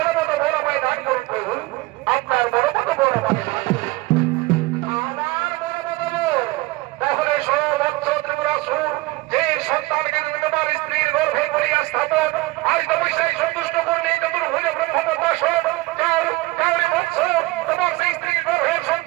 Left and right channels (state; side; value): quieter; left; 20.9 dB